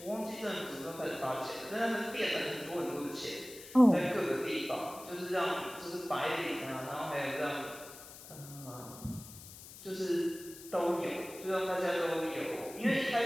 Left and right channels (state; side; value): noise; left; hiss, 16 dB below the sound